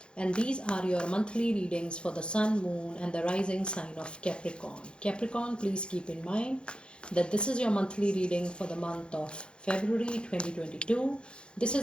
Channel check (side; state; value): right; late; 0.054 ms